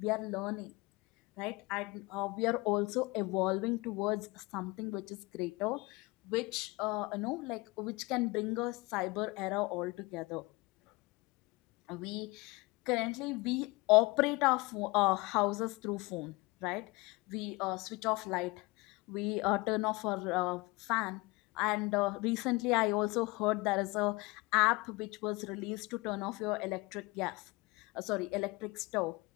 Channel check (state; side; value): quieter; right; 24.2 dB